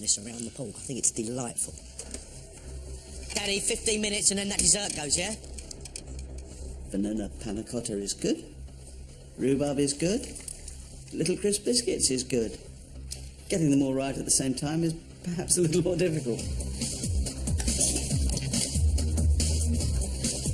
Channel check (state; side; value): identical; both; correlation 1.00